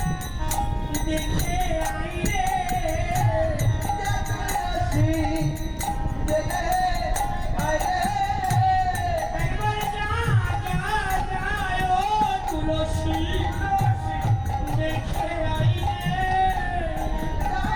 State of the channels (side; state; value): both; identical; correlation 1.00